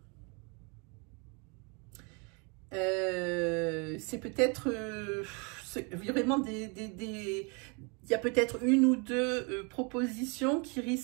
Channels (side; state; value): left; quieter; 33.1 dB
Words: C'est peut-être vraiment il y a peut-être une ou deux propositions